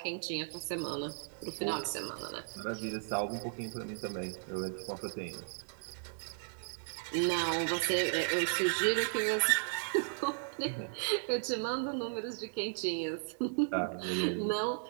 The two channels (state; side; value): silent; left; digital silence